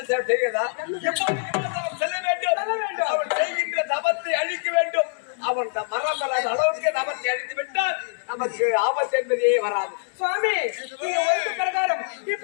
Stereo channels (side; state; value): right; silent; digital silence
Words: செய்கிறதா? செல்ல வேண்டும். அவன் செய்கின்ற தவத்தை அழிக்க வேண்டும். அவன் மரம் அளவுக்கு தவத்தை அழித்து விட்டால் நமக்கு ஆபத்து என்பதே வராது. சுவாமி நீங்க ஒழுங்கு பிரகாரம்